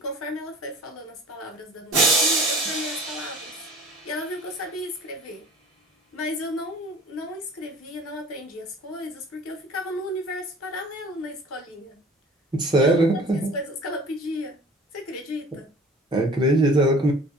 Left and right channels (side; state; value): both; normal; correlation 0.44